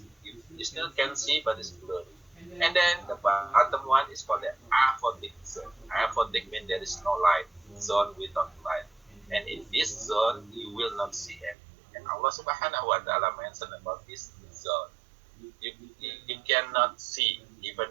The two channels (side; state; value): left; drops out; at 11.6 s